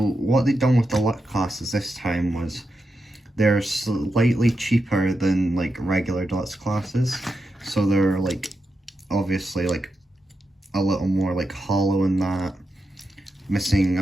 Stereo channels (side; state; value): both; normal; correlation 0.87